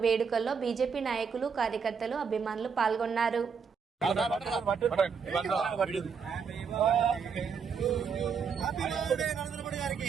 వేడుకల్లో బీజేపీ నాయకులు, కార్యకర్తలు, అభిమానులు పాల్గొన్నారు.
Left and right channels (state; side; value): quieter; left; 6.1 dB